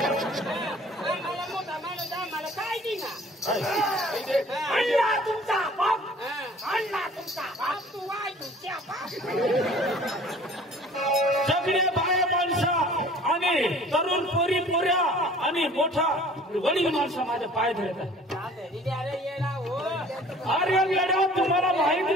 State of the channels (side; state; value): both; normal; correlation 0.49